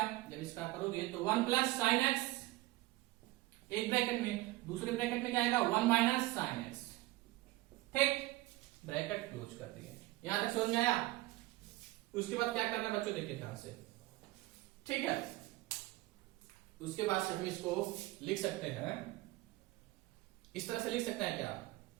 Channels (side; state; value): left; quieter; 18.8 dB